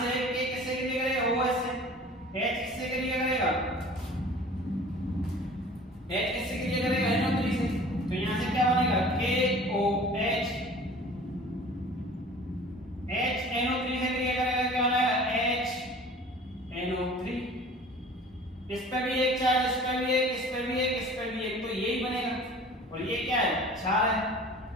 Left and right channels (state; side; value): normal; both; correlation 0.45